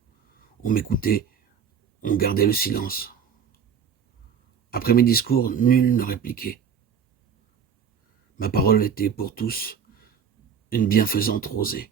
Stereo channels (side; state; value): left; quieter; 7.0 dB